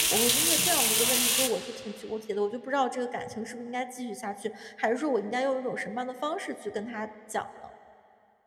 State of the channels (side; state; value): both; identical; correlation 1.00